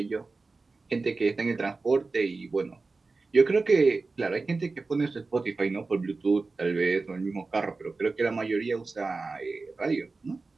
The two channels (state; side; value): quieter; left; 3.8 dB